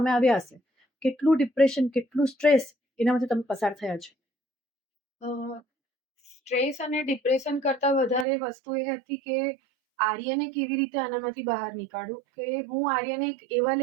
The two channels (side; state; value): left; drops out; at 8.2 s